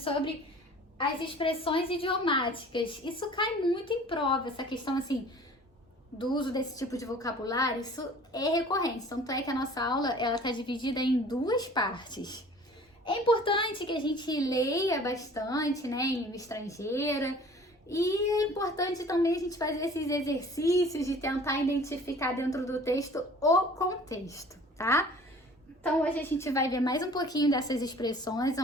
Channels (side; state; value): both; normal; correlation 0.48